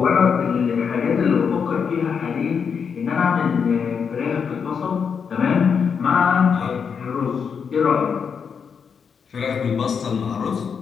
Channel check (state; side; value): quieter; right; 6.5 dB